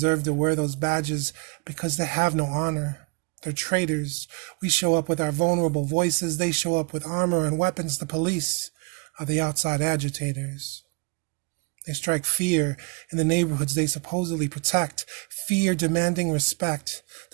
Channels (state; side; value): quieter; left; 30.6 dB